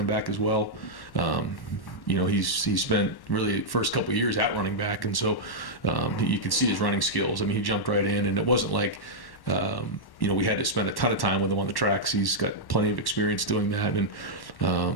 back as well. He's spent really the first couple of years at running back, and so you could see his running skills. I mean, he jumped right in, and it wasn't like we had to spend a ton of time with him on the tracks. He's got plenty of experience doing that, and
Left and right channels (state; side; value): late; right; 1.1 ms